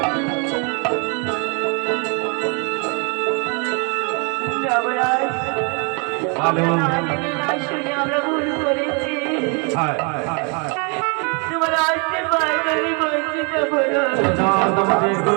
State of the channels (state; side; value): quieter; left; 35.1 dB